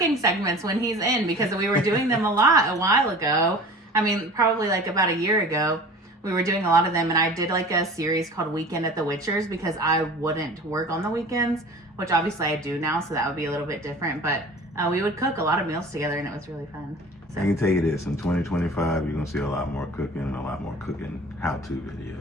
segments when he's in, because we were doing them a lot a while ago. I mean, probably like about a year ago, we were doing a lot of them, and I did like a series called Weekend at the Witchers because I wouldn't work on the weekends, which obviously I do now, so that would be a little bit different, but we would cook a lot of meals together, and it was really fun. So. I can tell you this, in 2025, you're going to see a lot more cooking and a lot more cooking how-to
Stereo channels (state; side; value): normal; both; correlation 0.41